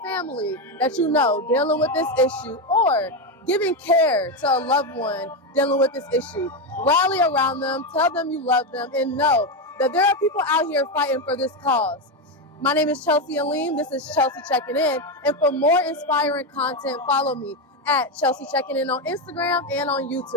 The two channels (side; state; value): both; normal; correlation 0.10